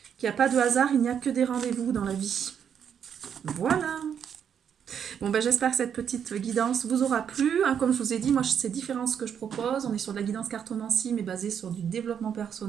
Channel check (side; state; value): left; quieter; 8.1 dB